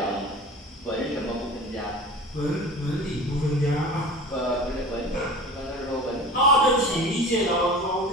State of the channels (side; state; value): both; normal; correlation 0.37